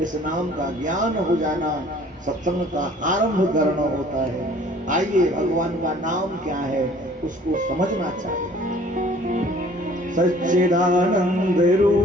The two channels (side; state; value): both; normal; correlation 0.53